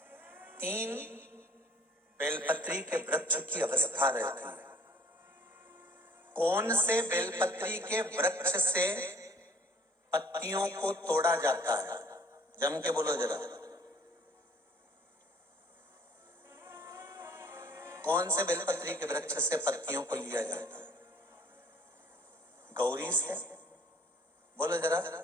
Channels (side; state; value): both; normal; correlation 0.55